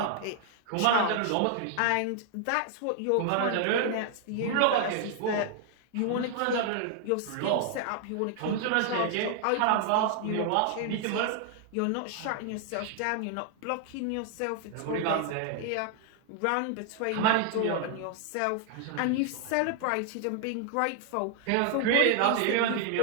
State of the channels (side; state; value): both; different; correlation 0.00